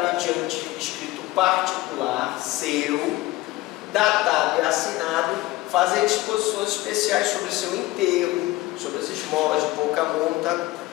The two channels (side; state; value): right; quieter; 18.8 dB